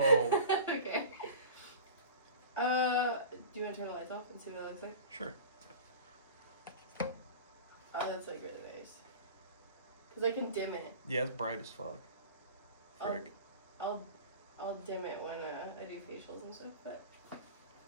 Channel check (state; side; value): inverted; both; correlation -0.37